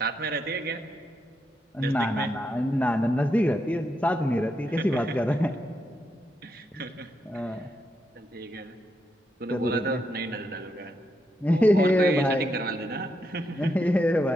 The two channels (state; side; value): normal; both; correlation 0.81